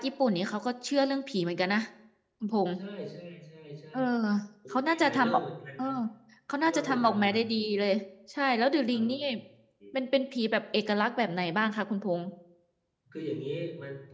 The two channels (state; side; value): identical; both; correlation 1.00